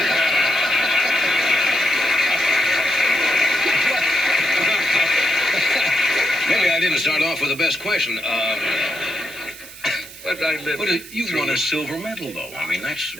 Maybe I didn't start off with the best question. But I lived. But you won a silver medal, though. I mean, that's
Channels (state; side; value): noise; right; hiss, 16 dB below the sound